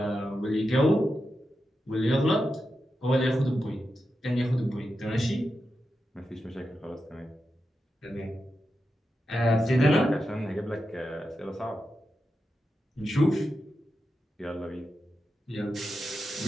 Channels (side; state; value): both; normal; correlation 0.89